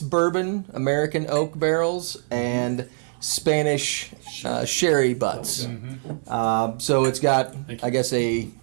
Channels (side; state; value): left; silent; digital silence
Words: American oak barrels and Spanish sherry butts. So it's got, I guess, We